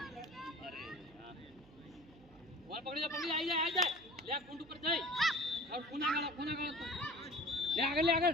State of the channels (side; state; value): right; noise; hum, 25 dB below the sound